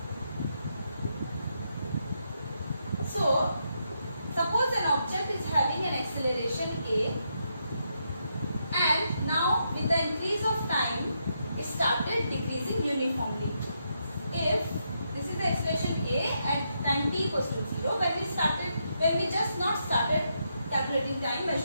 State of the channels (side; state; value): both; inverted; correlation -0.80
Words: So, suppose an object is having an acceleration a, and now with the increase of time, it started decreasing uniformly. If this is the acceleration a at time t equals to 0, when we just not started calculating time,